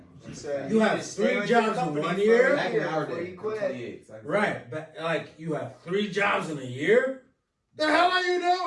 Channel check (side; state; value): both; identical; correlation 1.00